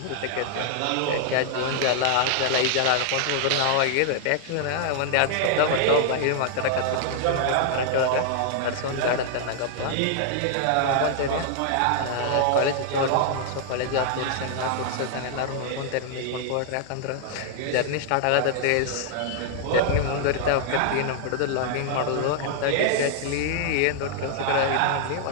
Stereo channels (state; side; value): different; both; correlation 0.00